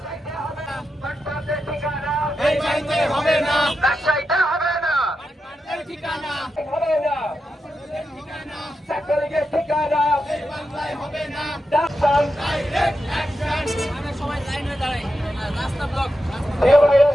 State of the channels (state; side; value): normal; both; correlation 0.87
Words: রাজশাহীতে হবে না ঠিকানা হবে না ছাত্রলীগের ঠিকানা হবে না সবাই লাইন হয়ে দাঁড়ায় রাস্তা ব্লক